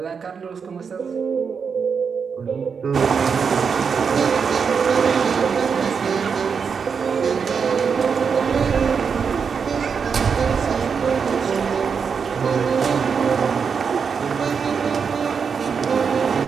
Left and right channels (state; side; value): quieter; left; 6.1 dB